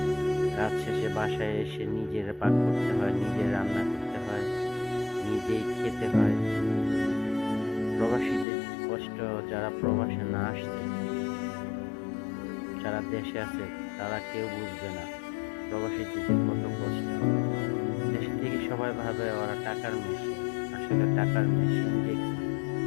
কাজ শেষে বাসায় এসে নিজের পাক করতে হয়, নিজে রান্না করতে হয়, নিজেই খেতে হয়। প্রবাসীদের কষ্ট যারা প্রবাসে না আসছে, যারা দেশে আছে তারা কেউ বুঝবে না প্রবাসীদের যে কত কষ্ট। দেশে থেকে সবাই ভাবে ওরা টাকার মেশিন। আসলে টাকার মেশিন যে কি?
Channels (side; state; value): right; drops out; at 8.5 s